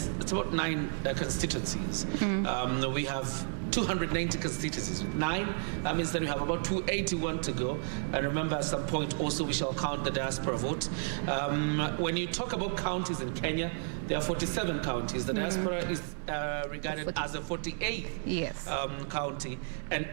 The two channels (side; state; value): left; silent; digital silence